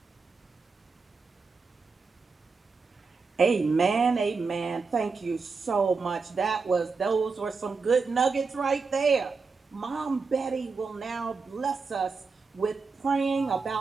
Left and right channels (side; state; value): left; quieter; 4.7 dB